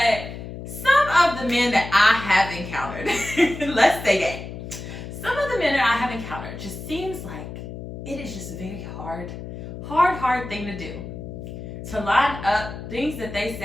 some of the men that I have encountered, let's say that, some of the men that I have encountered just seems like it is just a very hard thing to do. To line up things that they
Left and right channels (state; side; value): noise; left; hum, 10 dB below the sound